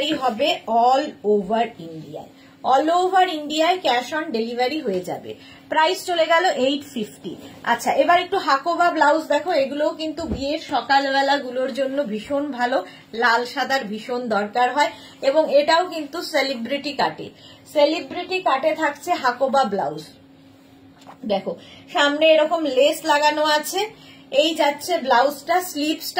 হবে অল ওভার ইন্ডিয়ায়, অল ওভার ইন্ডিয়ায় ক্যাশ অন ডেলিভারি হয়ে যাবে। প্রাইস চলে গেল 850। আচ্ছা, এবার একটু হাকোবা ব্লাউজ দেখো, এগুলোও কিন্তু বিয়ের সকালবেলা গুলোর জন্য ভীষণ ভালো, লাল সাদার ভীষণ দরকার হয় এবং এটাও কিন্তু সেলিব্রিটি কাটে, সেলিব্রিটি কাটে থাকছে হাকোবা ব্লাউজ। দেখো সামনে এরকম লেস লাগানো আছে, এই যাচ্ছে ব্লাউজটা,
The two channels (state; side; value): identical; both; correlation 1.00